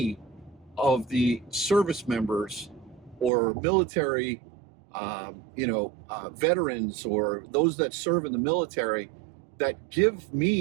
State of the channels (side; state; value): left; drops out; at 3.3 s